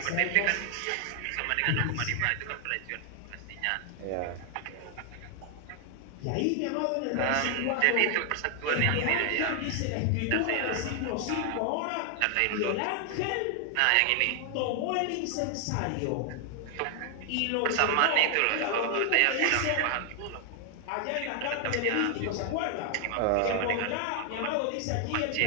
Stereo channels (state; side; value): different; both; correlation 0.00